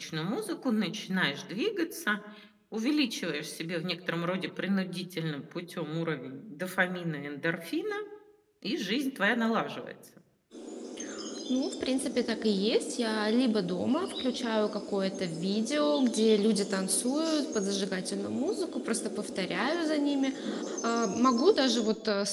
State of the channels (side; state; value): both; identical; correlation 1.00